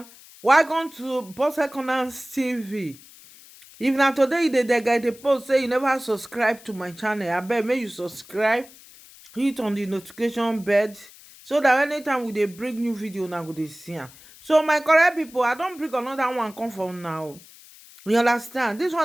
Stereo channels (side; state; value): left; noise; hiss, 22 dB below the sound